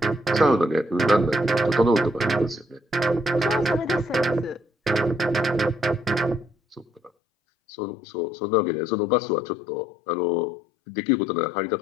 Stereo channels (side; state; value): right; drops out; at 7.1 s